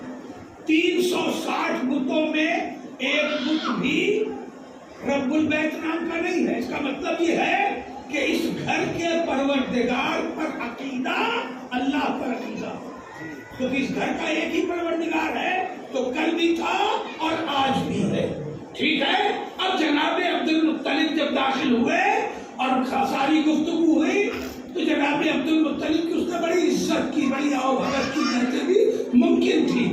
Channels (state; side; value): identical; both; correlation 1.00